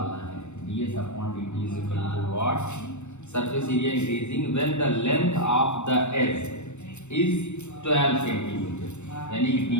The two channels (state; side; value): late; right; 0.83 ms